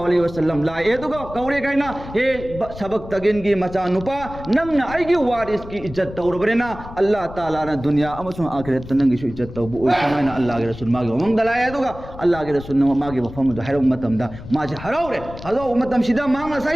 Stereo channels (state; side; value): noise; left; rumble, 14 dB below the sound